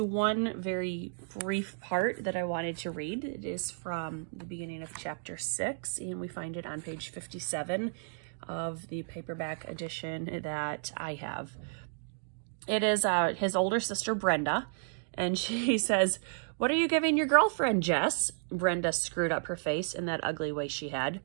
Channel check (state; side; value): silent; left; digital silence